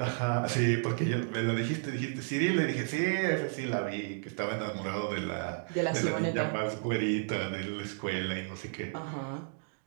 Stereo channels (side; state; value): left; silent; 56 dB below the other